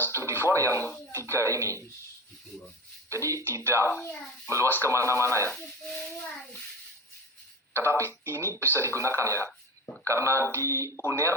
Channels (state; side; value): normal; both; correlation 0.30